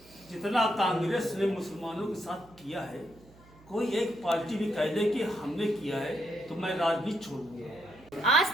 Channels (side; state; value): right; noise; hum, 25 dB below the sound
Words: जितना कांग्रेस ने मुसलमानों के साथ किया है, कोई एक पार्टी भी कह दे कि हमने किया है तो मैं राजनीति छोड़ दूंगा। आज